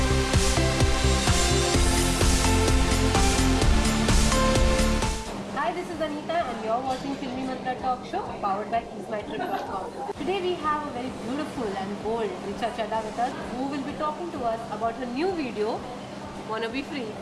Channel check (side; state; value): both; identical; correlation 1.00